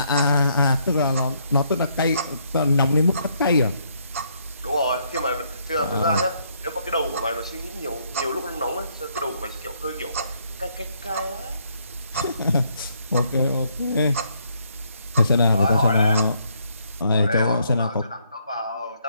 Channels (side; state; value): both; inverted; correlation -0.71